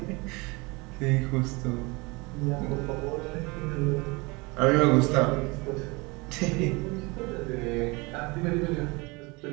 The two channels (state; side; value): quieter; left; 26.0 dB